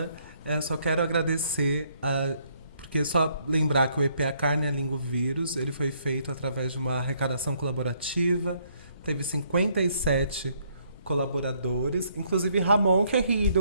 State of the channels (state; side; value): inverted; both; correlation -0.69